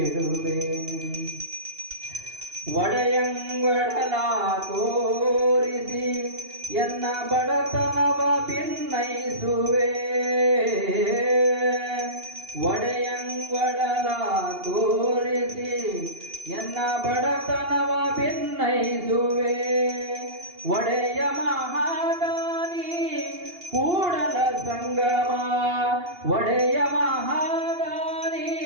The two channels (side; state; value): left; late; 2.8 ms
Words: ಒಡೆಯಂಗೊಡಲ ತೋರಿಸಿ ಎನ್ನ ಬಡತನವ ಭಿನ್ನೈಸುವೆ ಒಡೆಯಂಗೊಡಲ ತೋರಿಸಿ ಎನ್ನ ಬಡತನವ ಭಿನ್ನೈಸುವೆ ಒಡೆಯ ಮಹಾದಾನಿ ಕೂಡಲ ಸಂಗಮ ಒಡೆಯ ಮಹಾದಾನಿ